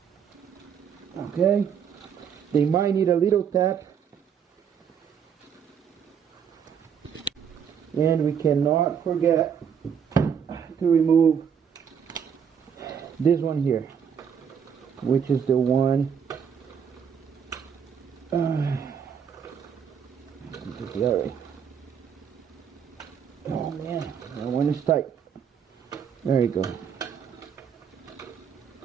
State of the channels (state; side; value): quieter; left; 7.6 dB